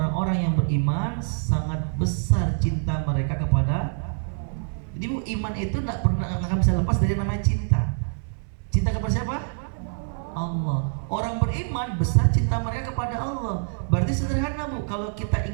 yang beriman sangat besar cinta mereka kepada. Jadi Bu, iman itu tidak pernah akan bisa lepas dari namanya cinta. Cinta kepada siapa? Allah. Orang beriman besar cinta mereka kepada Allah. Berarti sederhana Bu, kalau kita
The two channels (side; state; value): left; silent; 62 dB below the other